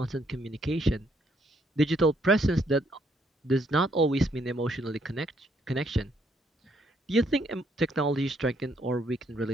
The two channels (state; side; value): normal; both; correlation 0.71